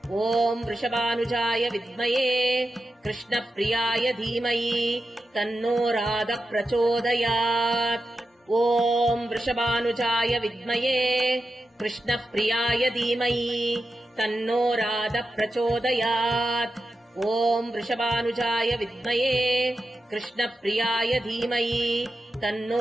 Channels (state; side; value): normal; both; correlation 0.90